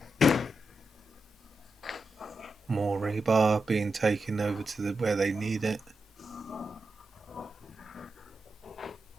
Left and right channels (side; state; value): both; normal; correlation 0.88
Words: More rebar being taken over to where they need it.